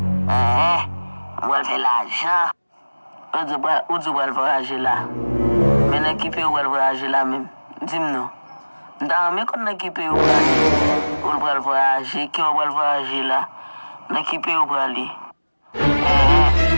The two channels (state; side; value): inverted; both; correlation -1.00